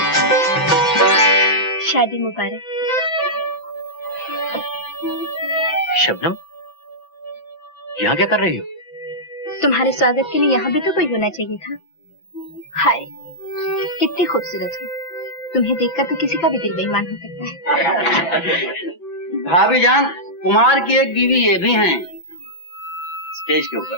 शादी मुबारक। शबनम, यहाँ क्या कर रही हो? तुम्हारे स्वागत के लिए यहाँ भी तो कोई होना चाहिए था। हाय, कितनी खूबसूरत हो। तुम्हें देखकर तो किसी का भी दिल बेईमान हो सकता है। भाभी जान, कुमार की एक बीवी ये भी हैं। स्टेज के ऊपर।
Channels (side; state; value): right; late; 6.0 ms